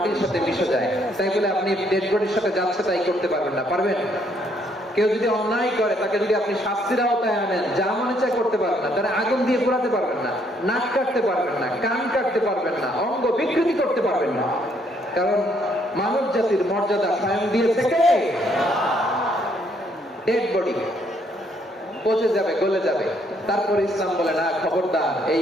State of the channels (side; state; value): both; normal; correlation 0.69